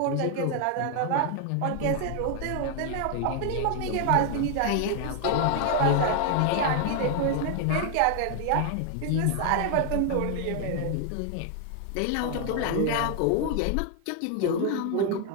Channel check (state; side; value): different; both; correlation 0.00